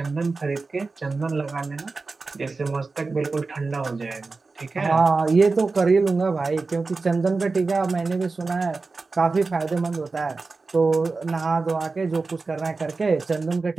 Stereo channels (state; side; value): quieter; left; 3.9 dB